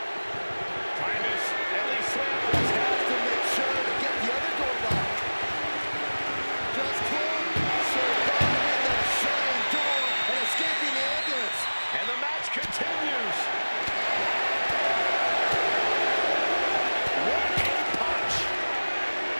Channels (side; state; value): both; inverted; correlation -1.00